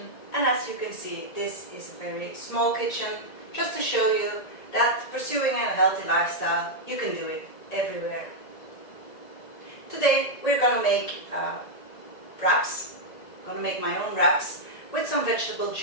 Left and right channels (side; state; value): right; late; 1.8 ms